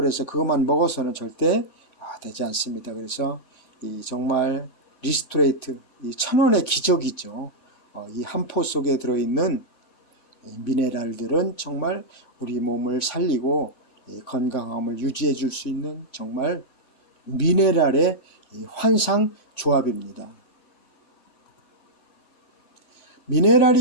그것만 먹어서는 절대 되지 않습니다. 그래서 이 정말 리스토레이트, 이 천원의 기적이죠. 이 한 포 속에 들어있는 미네랄들은 정말 우리 몸을 살리고 건강함을 유지해 줄 수 있는 정말 미네랄의 환상 조합입니다.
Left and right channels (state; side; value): late; right; 7.7 ms